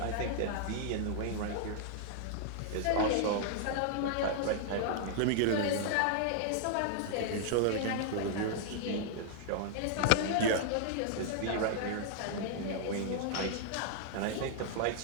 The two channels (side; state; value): both; different; correlation -0.01